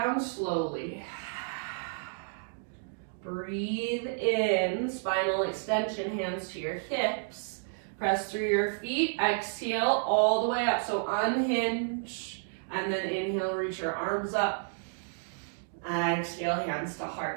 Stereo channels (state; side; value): silent; left; digital silence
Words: slowly. Breathe in, spinal extension, hands to your hips. Press through your feet, exhale all the way up. So unhinge, and then inhale, reach your arms up. Exhale, hands to